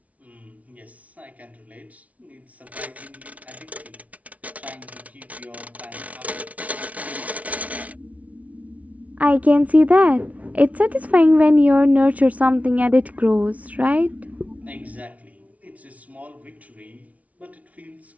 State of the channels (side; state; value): left; late; 0.068 ms